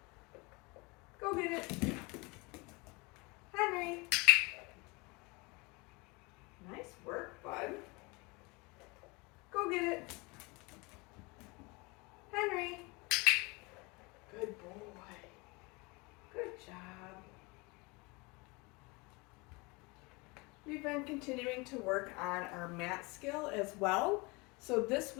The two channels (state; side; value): quieter; right; 26.8 dB